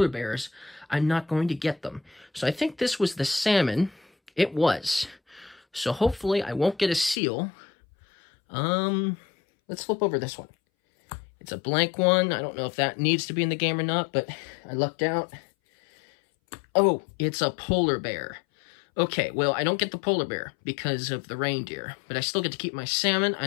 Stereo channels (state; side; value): drops out; right; at 7.2 s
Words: bears, I'm not going to get them. So I think this was the salmon. It was. So hopefully I won't get a seal. Let's flip over this one. It's a blank one. I don't know if that needs to be in the game or not, but I lucked out. Oh, it's a polar bear. Okay, well, I don't get the polar bear because of the reindeer, but I still get to keep my salmon,